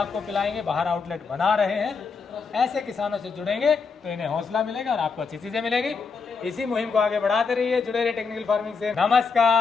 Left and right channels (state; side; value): quieter; right; 5.1 dB